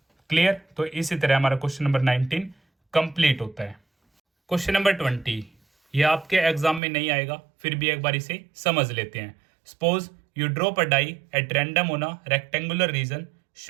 क्लियर। तो इसी तरह हमारा क्वेश्चन नंबर 19 कंप्लीट होता है। क्वेश्चन नंबर 20, ये आपके एग्जाम में नहीं आएगा, फिर भी एक बार इसे समझ लेते हैं। Suppose you drop a die at random on a rectangular region,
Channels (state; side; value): drops out; left; at 6.8 s